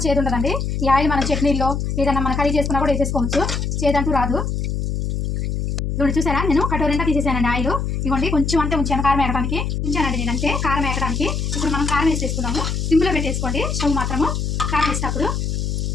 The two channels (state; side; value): noise; left; hum, 1 dB below the sound